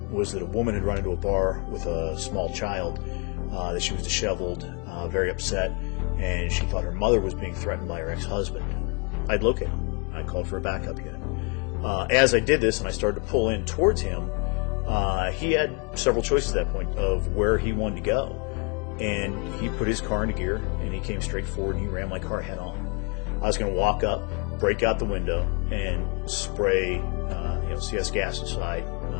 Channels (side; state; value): right; quieter; 32.1 dB